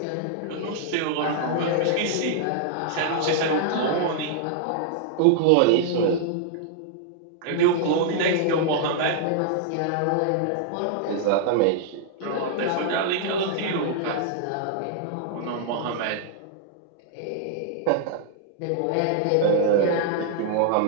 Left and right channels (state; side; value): different; both; correlation -0.01